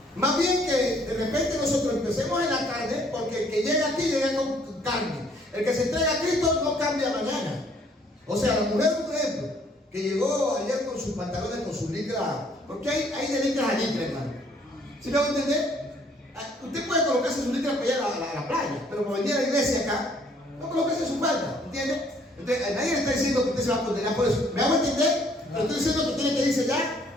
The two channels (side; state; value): both; normal; correlation 0.63